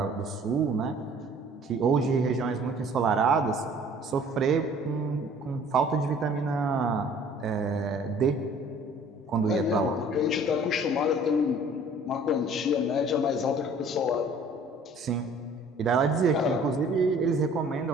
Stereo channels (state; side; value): normal; both; correlation 0.52